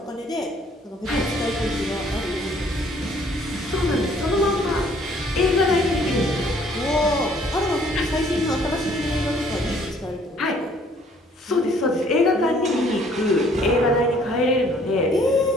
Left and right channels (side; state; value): both; normal; correlation 0.60